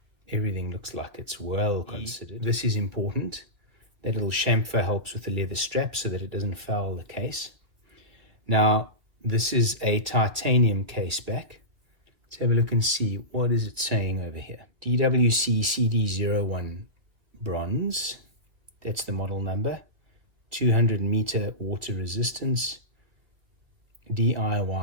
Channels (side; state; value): left; late; 1.8 ms